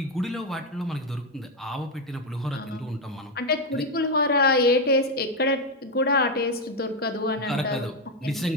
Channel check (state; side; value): normal; both; correlation 0.07